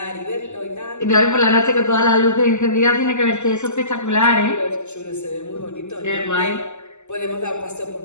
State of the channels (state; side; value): late; right; 0.83 ms